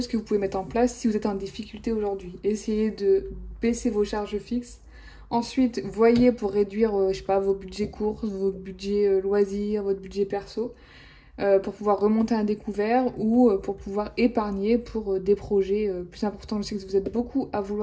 que vous pouvez mettre en place si vous êtes en difficulté aujourd'hui. Essayez de baisser vos charges fixes. Ensuite, voyez pour réduire, je sais pas, vos budgets courses, vos budgets loisirs, votre budget perso, pour pouvoir remonter un découvert ou pour pouvoir épargner pour des projets plus importants. Je sais que vous êtes beaucoup à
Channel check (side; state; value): both; identical; correlation 1.00